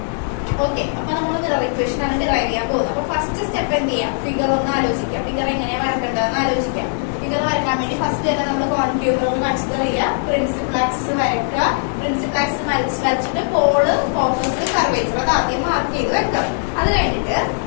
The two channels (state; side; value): silent; right; 66 dB below the other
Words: ഓക്കെ, അപ്പൊ നമ്മൾ മിറർ ഇക്വേഷൻ ആണ് ഡിറൈവ് ചെയ്യാൻ പോകുന്നത്. അപ്പൊ ഫസ്റ്റ് സ്റ്റെപ്പ് എന്ത് ചെയ്യാം? ഫിഗർ ഒന്ന് ആലോചിക്കാം. ഫിഗർ എങ്ങനെയാ വരക്കേണ്ടതെന്ന് ആലോചിക്കാം. ഫിഗർ വരക്കാൻ വേണ്ടി ഫസ്റ്റ് തന്നെ നമ്മൾ കോൺട്യൂബർ കൺസിഡർ ചെയ്യുക. പ്രിൻസിപ്പൽ ആക്സിസ് വരയ്ക്കുക. പ്രിൻസിപ്പൽ ആക്സിസ് വരച്ചിട്ട് പോള്, ഫോക്കസ്, കർവേച്ചർ അത് ആദ്യം മാർക്ക് ചെയ്ത് വെക്കാം. അത് കഴിഞ്ഞിട്ട്